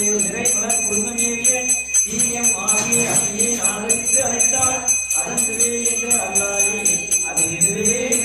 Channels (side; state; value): right; noise; hum, 23 dB below the sound